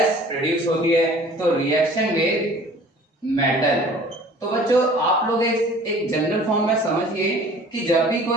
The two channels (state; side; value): normal; both; correlation 0.48